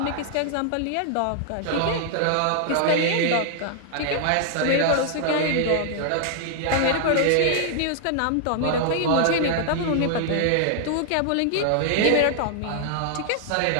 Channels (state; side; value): different; both; correlation 0.00